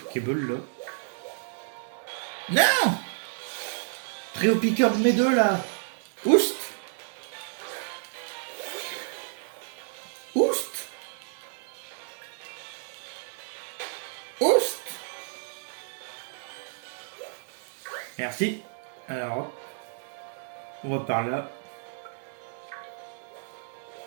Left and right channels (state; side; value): silent; left; digital silence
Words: là. Non. Très au piqueur de mes deux là. Oust. Oust. Oust. Merci. Alors, on va par là.